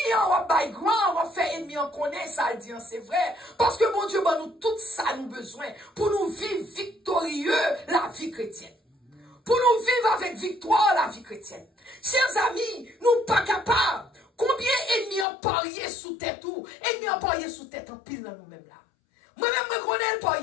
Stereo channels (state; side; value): drops out; right; at 15.2 s